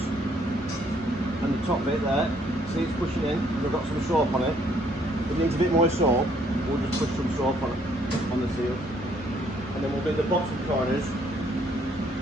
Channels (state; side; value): normal; both; correlation 0.66